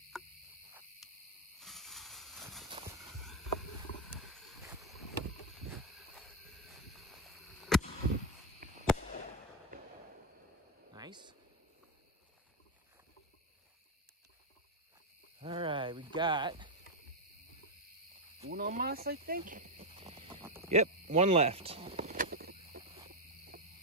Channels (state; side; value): normal; both; correlation 0.05